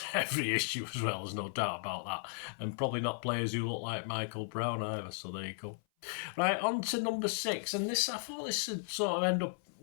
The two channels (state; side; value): silent; right; 54 dB below the other